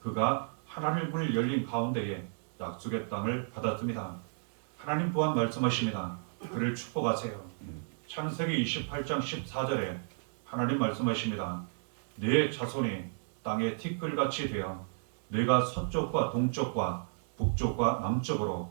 그가 하늘문을 열린 가운데에 약속의 땅을 받았습니다. 하나님 또한 말씀하십니다. 그를 축복하세요. 창세기 28장 14절에 하나님 말씀하십니다. 네 자손이 땅의 티끌같이 되어 내가 서쪽과 동쪽과 북쪽과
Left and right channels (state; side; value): silent; left; digital silence